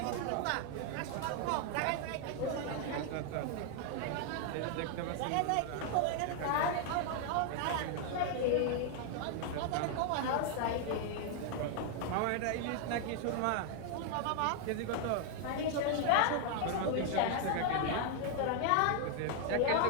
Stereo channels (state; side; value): different; both; correlation 0.00